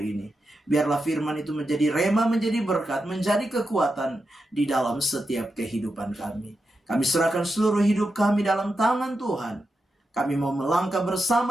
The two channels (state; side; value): normal; both; correlation 0.88